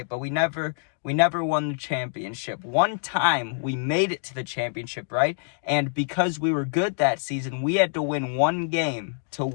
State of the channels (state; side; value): silent; right; digital silence